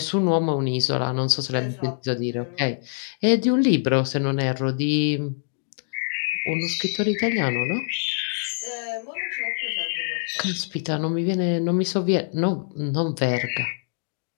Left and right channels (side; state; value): right; silent; digital silence